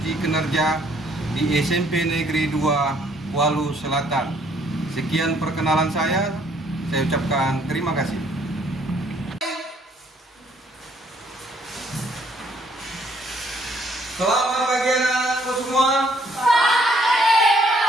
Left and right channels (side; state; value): both; normal; correlation 0.65